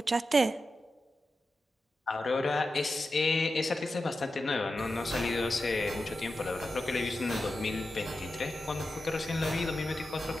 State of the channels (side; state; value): both; normal; correlation 0.91